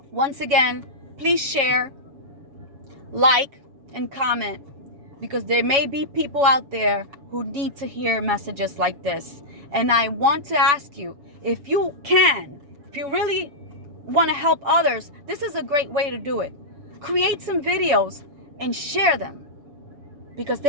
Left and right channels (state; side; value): late; left; 7.1 ms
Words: Once again, please share, like, and comment because there may be people out there who need to hear messages like this. And I want to ask you, if you if you really want to help others, this is a great way to do it. Create some videos and share them, because